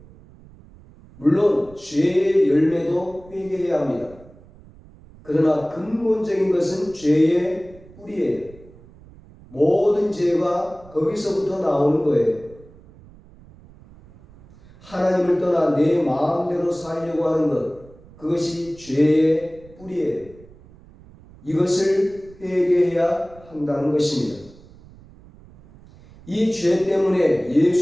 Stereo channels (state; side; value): noise; right; rumble, 23 dB below the sound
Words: 물론 죄의 열매도 회개해야 합니다. 그러나 근본적인 것은 죄의 뿌리예요. 모든 죄가 거기서부터 나오는 거예요. 하나님을 떠나 내 마음대로 살려고 하는 것, 그것이 죄의 뿌리예요. 이것을 회개해야 한다는 것입니다. 이 죄 때문에